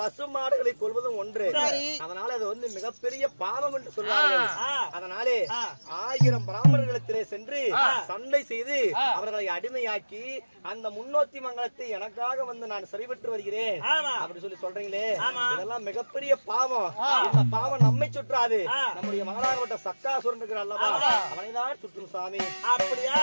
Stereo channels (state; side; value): inverted; both; correlation -1.00